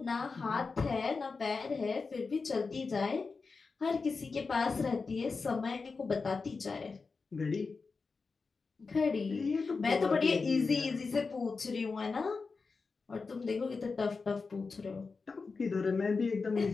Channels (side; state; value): right; quieter; 4.5 dB